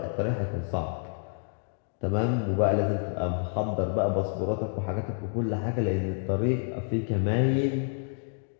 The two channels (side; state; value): right; silent; digital silence